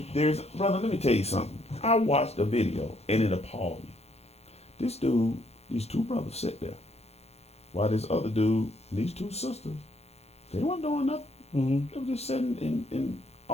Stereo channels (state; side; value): late; right; 0.31 ms